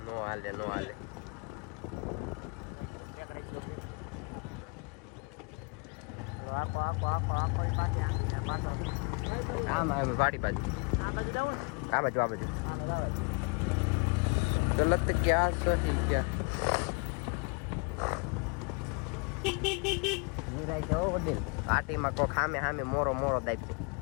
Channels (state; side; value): quieter; right; 33.7 dB